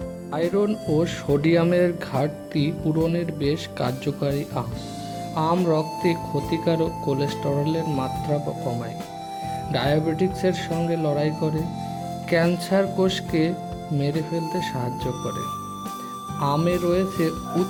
আয়রন ও সোডিয়ামের ঘাটতি পূরণের বেশ কার্যকারী আম রক্তে ক্ষতিকারক কোলেস্টেরলের মাত্রা কমায়, ডায়াবেটিক্সের সঙ্গে লড়াই করে, ক্যান্সার কোষকে মেরে ফেলতে সাহায্য করে। আমে রয়েছে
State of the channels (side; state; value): both; identical; correlation 1.00